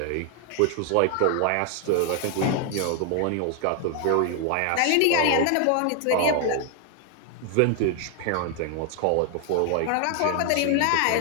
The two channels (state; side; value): different; both; correlation 0.00